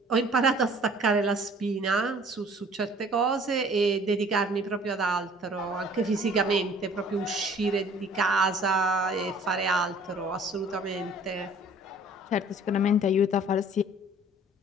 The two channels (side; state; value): both; normal; correlation 0.52